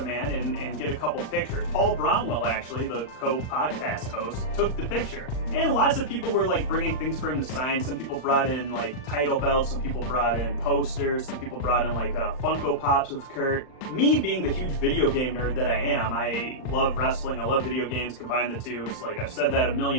man and get a couple pictures. Paul Bromwell, actually, the co-podcast host, took the picture. And lots of people were like bringing things for him to sign. Some people brought in like title belts, some people brought in posters, some people brought in like Funko Pops of Kurt. Me being the huge video game nerd that I am, I love wrestling, I love video games, combine the two. It's like, I've said that a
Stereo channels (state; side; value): late; right; 39 ms